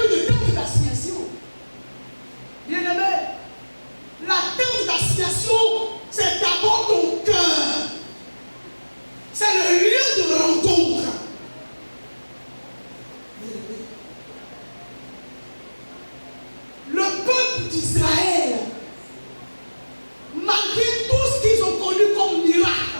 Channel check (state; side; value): inverted; both; correlation -1.00